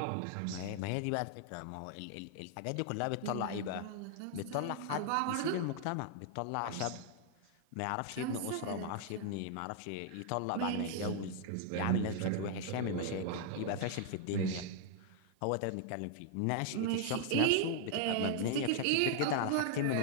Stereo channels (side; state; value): both; different; correlation -0.01